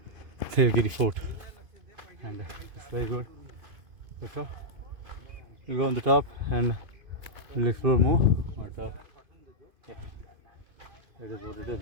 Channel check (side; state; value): left; late; 2.5 ms